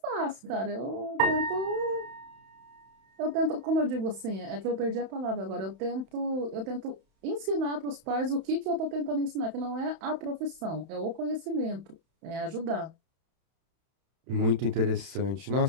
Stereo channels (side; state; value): left; late; 31 ms